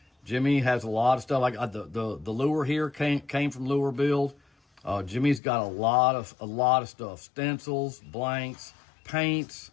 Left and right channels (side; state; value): right; drops out; at 5.4 s